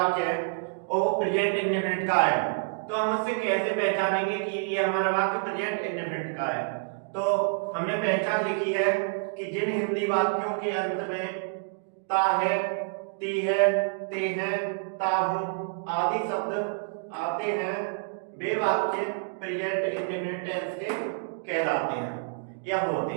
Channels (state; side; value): silent; left; digital silence